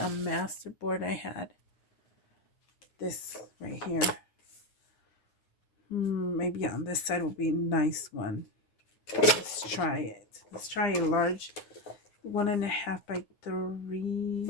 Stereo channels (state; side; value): late; right; 9.9 ms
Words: masterboard I had. This right here. Maybe on this side will be a nice one. Let's try it. Let's try a large 1.5 by 3.